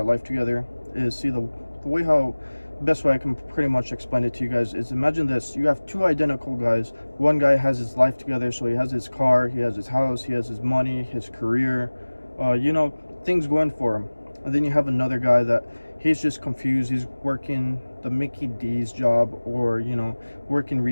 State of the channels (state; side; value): inverted; both; correlation -1.00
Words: life together, is see the way how, best way I can pretty much explain it to you guys is, imagine this: you have two identical guys. One guy has his life together, so he has his car, he has his house, he has his money, his career, things going for him. And then you have another guy that he's just confused. He's working the Mickey D's job, or working